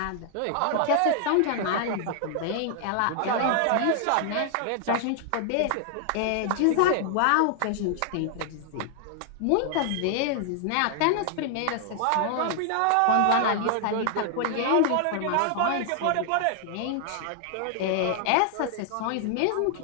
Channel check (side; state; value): both; different; correlation 0.00